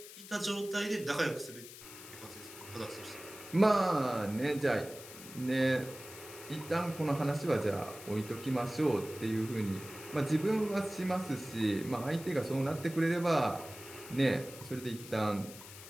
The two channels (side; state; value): left; noise; hiss, 15 dB below the sound